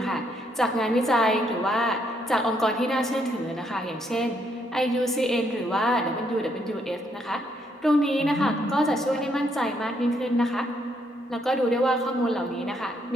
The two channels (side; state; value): both; normal; correlation 0.73